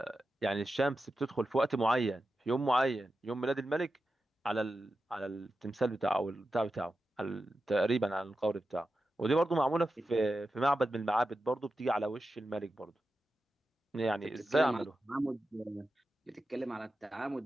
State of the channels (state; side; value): normal; both; correlation 0.91